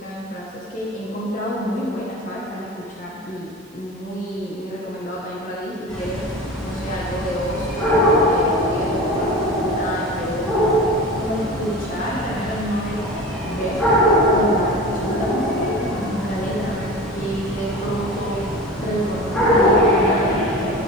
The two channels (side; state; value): both; normal; correlation 0.33